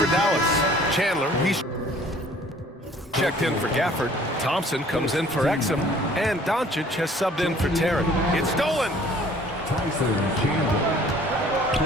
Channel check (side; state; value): both; normal; correlation 0.54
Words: Dallas. Chandler, he's checked in for Gafford. Thompson comes in for Exum. And Doncic has subbed in for Terry. It's stolen.